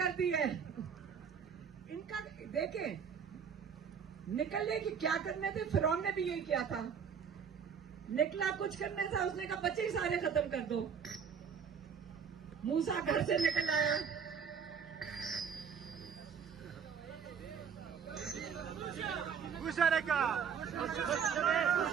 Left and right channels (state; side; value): quieter; left; 6.9 dB